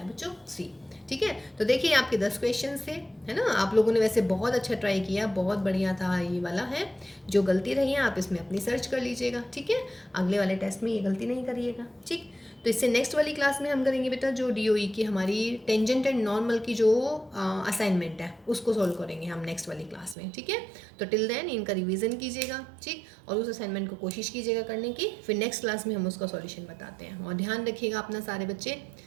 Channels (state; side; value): drops out; left; at 20.2 s